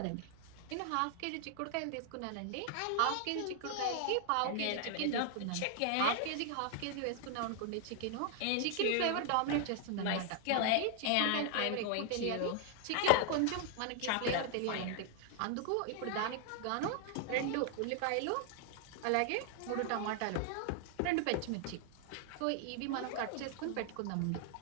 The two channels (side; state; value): both; different; correlation 0.00